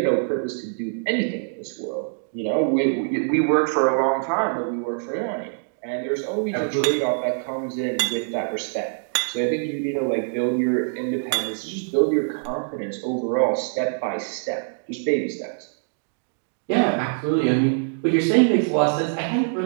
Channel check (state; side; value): silent; left; digital silence